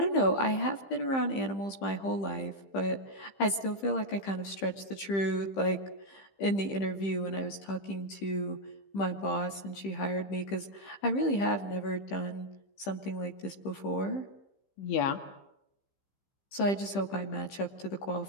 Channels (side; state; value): right; late; 15 ms